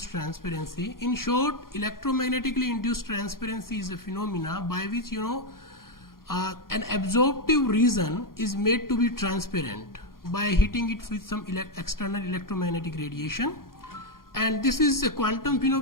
transparency. In short, electromagnetically induced transparency is a phenomena by which an absorptive region is made to be transparent by hitting it with some external electromagnetic radiation, and this is a quantum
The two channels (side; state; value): right; late; 0.92 ms